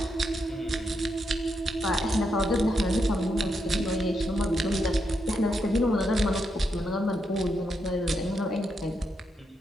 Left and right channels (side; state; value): both; normal; correlation 0.82